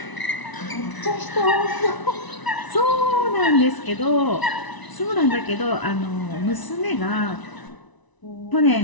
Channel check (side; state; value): right; late; 1.0 ms